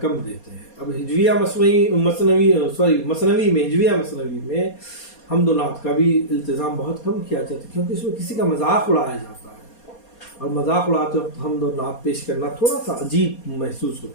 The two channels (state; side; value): late; right; 4.2 ms